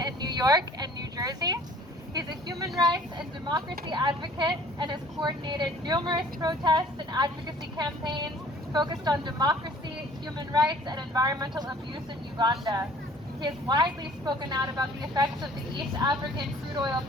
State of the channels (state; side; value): normal; both; correlation 0.52